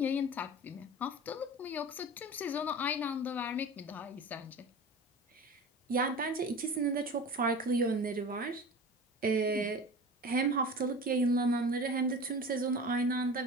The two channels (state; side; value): normal; both; correlation 0.35